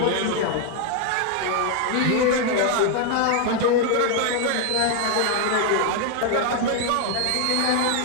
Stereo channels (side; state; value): both; different; correlation 0.01